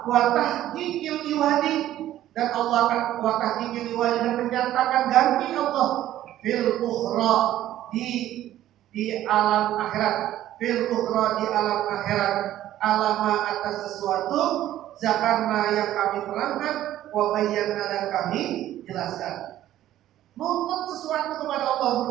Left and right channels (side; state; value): left; quieter; 13.1 dB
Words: tahqiqil iwadi, dan Allah akan wa tahqiqil iwadi, dan menyatakan ganti Allah fil ukhra di alam akhirat, alama atas sesuatu zakarna yang kami terangkan, wa bayyana, dan kami jelaskan. Nuntut sesuatu kepada Allah